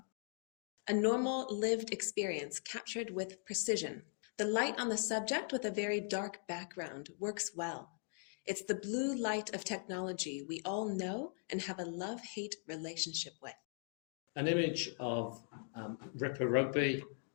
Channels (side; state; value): right; silent; 51 dB below the other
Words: A normal lived experience captured with precision. The light on the subject with a very dark background works well. It's the blue light of technology we all know and have a love-hate relationship with. An image of Ripper rugby,